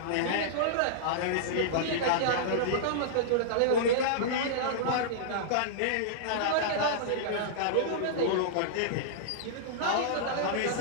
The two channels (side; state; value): both; different; correlation -0.02